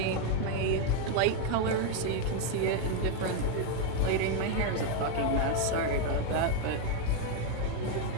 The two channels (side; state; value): both; different; correlation 0.01